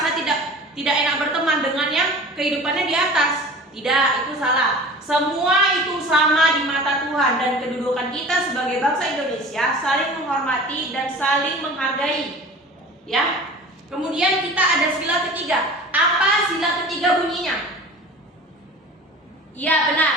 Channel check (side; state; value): both; normal; correlation 0.39